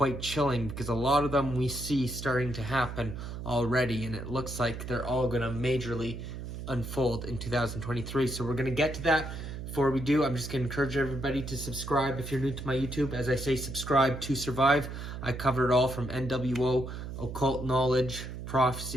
chilling, because a lot of them we see starting to happen already, and it looks like they're all going to majorly unfold in 2023. So we're going to get to that. Before we do, I'm just going to encourage everybody to subscribe if you're new to my YouTube. As I say, subscribe to survive. I cover it all from NWO, occult knowledge,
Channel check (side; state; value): right; noise; hum, 8 dB below the sound